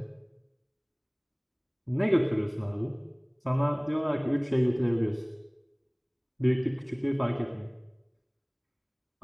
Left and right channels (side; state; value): both; identical; correlation 1.00